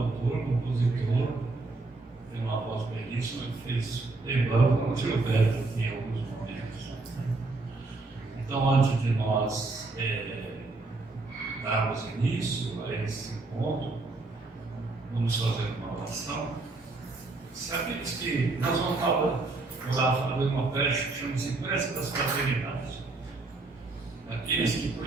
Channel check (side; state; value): left; quieter; 3.4 dB